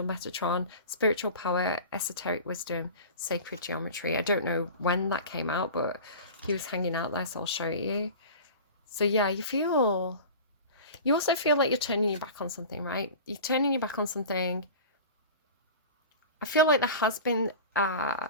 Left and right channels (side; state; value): both; inverted; correlation -0.35